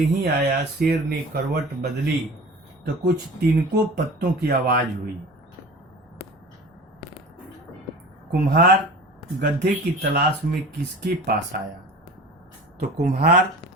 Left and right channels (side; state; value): both; normal; correlation 0.38